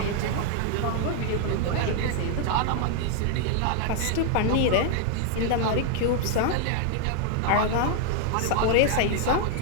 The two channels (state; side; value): different; both; correlation 0.00